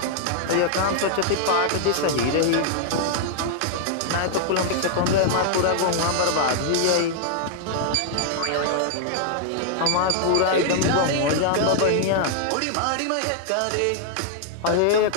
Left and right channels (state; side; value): different; both; correlation 0.00